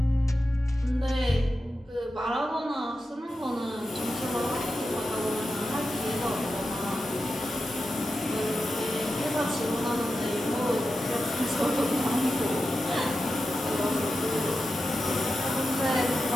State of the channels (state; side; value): normal; both; correlation 0.91